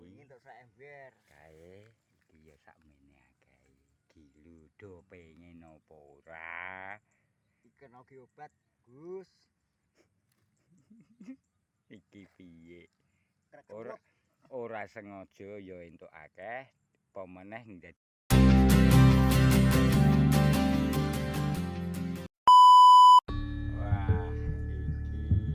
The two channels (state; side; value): identical; both; correlation 1.00